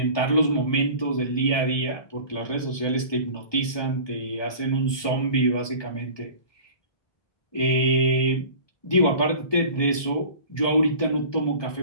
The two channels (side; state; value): right; late; 1.2 ms